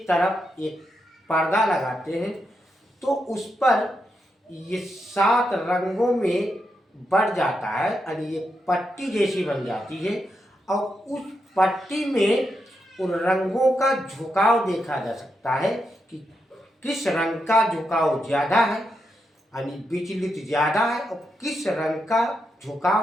तरफ एक पर्दा लगाते हैं तो उस पर ये 7 रंगों में बढ़ जाता है यानी ये पट्टी जैसी बन जाती है और उस पट्टी में उन रंगों का झुकाव देखा जा सकता है कि किस रंग का झुकाव ज़्यादा है यानी विचलित ज़्यादा है और किस रंग का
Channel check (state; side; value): normal; both; correlation 0.84